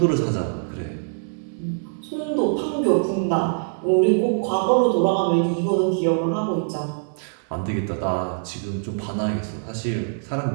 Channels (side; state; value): left; silent; digital silence